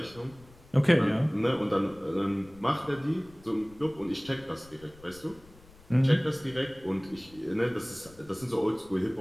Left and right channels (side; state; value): left; noise; rumble, 24 dB below the sound